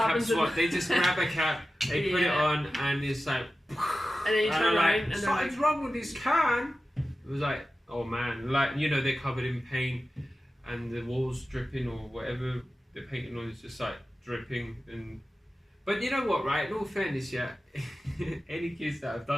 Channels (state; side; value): normal; both; correlation 0.94